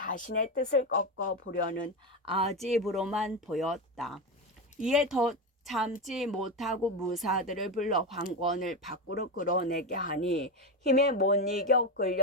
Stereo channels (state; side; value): normal; both; correlation 0.15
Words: 뜻을 꺾어보려는 아집으로만 보였다. 이에 더 참지 못하고 무사들을 불러 황권을 밖으로 끌어내게 하니 힘에 못 이겨